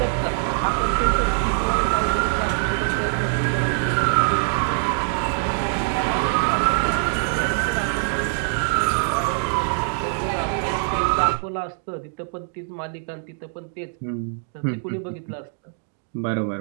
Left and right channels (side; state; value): left; silent; digital silence